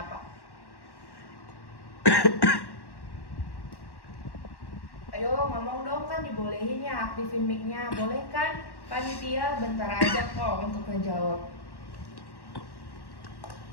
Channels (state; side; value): late; right; 1.1 ms